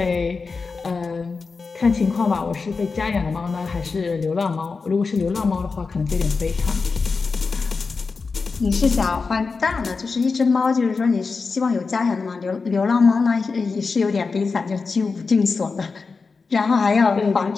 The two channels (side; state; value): right; quieter; 4.5 dB